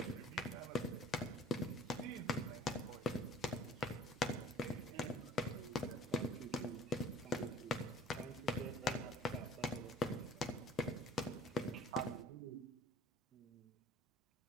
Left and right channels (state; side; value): normal; both; correlation 0.51